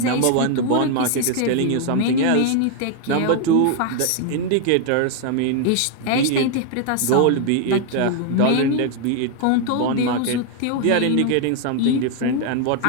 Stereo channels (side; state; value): both; different; correlation 0.00